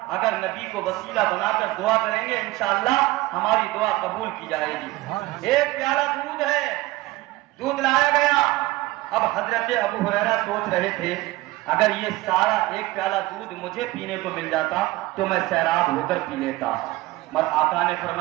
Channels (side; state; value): left; quieter; 19.0 dB